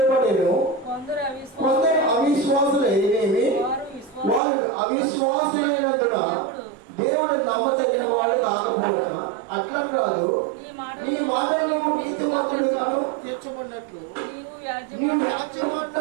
కొందరు అవిశ్వాసులైనవి, వారు అవిశ్వాసులైనందున దేవుడు నమ్మదగిన వాడు కాకపోయినా అట్లా కాదు, నీ మాటలు నీతిమంతుడుగాను తీర్చబడినట్లు నీవు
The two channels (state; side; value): drops out; left; at 4.4 s